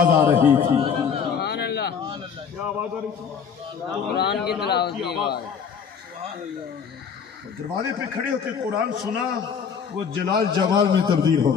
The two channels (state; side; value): quieter; right; 6.7 dB